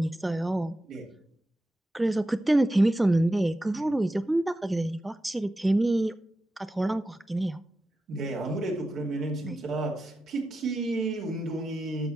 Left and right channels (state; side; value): normal; both; correlation 0.91